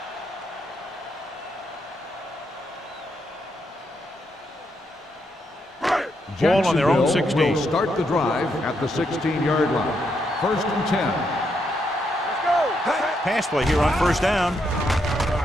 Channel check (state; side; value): normal; both; correlation 0.79